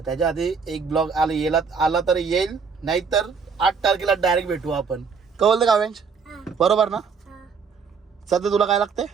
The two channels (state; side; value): quieter; left; 5.6 dB